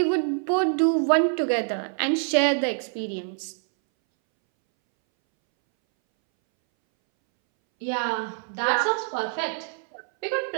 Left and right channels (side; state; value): left; silent; 62 dB below the other